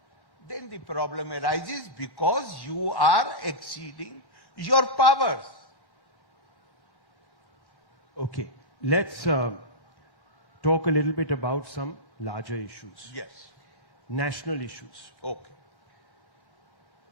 then the problem arises because you are exceeding your powers. Okay, let's talk a little bit about some larger issues. Yes. National issues. Okay.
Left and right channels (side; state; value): left; late; 1.3 ms